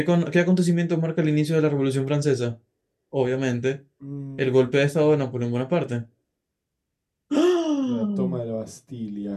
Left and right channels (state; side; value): identical; both; correlation 1.00